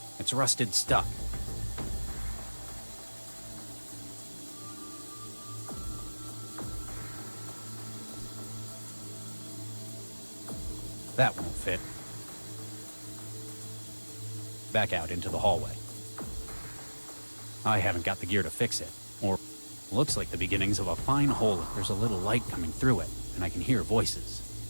It's rusted stuck. That won't fit. Back out into the hallway. I haven't got the gear to fix it. Or looks like the beginnings of a fine hole. There's a little light coming through it, and I can hear voices.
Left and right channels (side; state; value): both; inverted; correlation -1.00